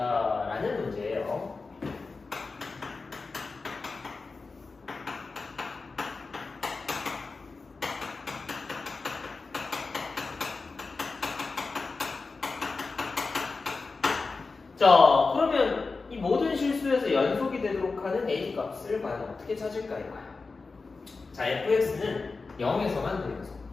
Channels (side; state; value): right; quieter; 4.1 dB